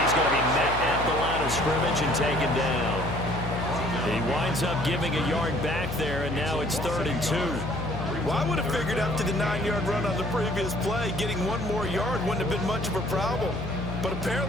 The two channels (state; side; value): noise; left; hum, 7 dB below the sound